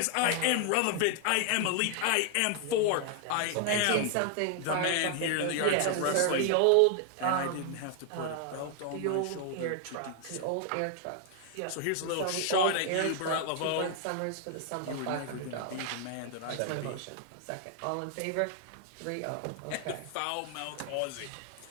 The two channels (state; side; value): different; both; correlation 0.00